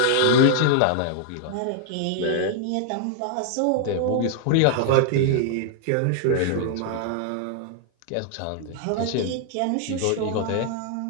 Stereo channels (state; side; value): different; both; correlation -0.01